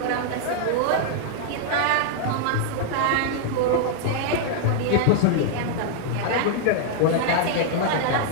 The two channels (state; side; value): different; both; correlation -0.01